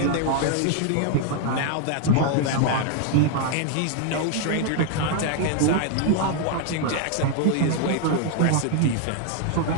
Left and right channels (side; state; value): both; different; correlation 0.00